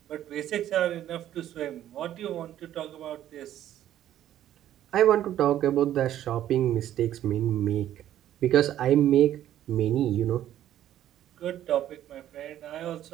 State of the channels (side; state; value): left; quieter; 12.0 dB